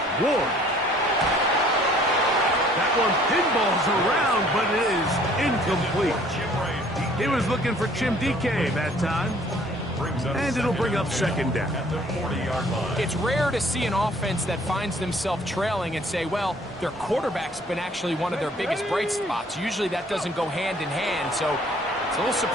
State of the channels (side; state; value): both; normal; correlation 0.57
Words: Ward. That one pinballs around, but it is incomplete. He was looking for Chim DK that time. And it'll bring up second down. It's rare to see an offense that finds themselves trailing and say, well, their quarterback's been actually one of their biggest bright spots. Usually that doesn't go hand in hand, so it's a little